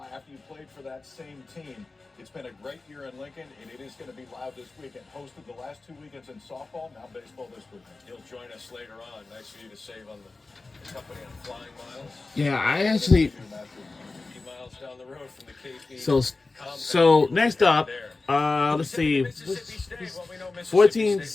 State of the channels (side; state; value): right; quieter; 3.6 dB